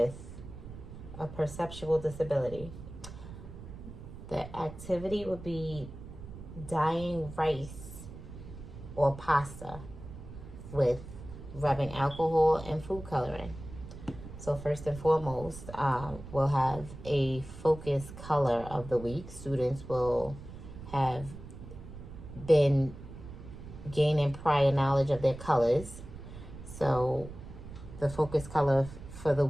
a perceptual disability. The activity would be dyeing rice or pasta with rubbing alcohol and food coloring. So first and foremost, we'll have a focus color of the week. Students will have been gaining prior knowledge of their colors. So the focus color for the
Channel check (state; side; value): noise; right; rumble, 13 dB below the sound